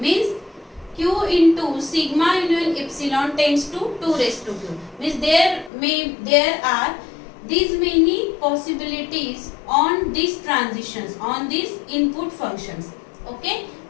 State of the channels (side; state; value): right; drops out; at 5.7 s